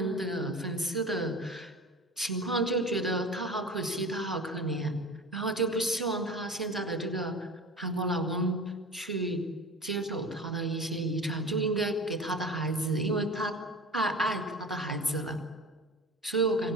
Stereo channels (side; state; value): both; normal; correlation 0.35